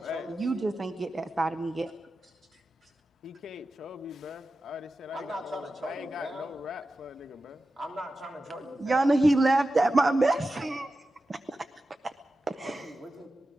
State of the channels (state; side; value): normal; both; correlation 0.93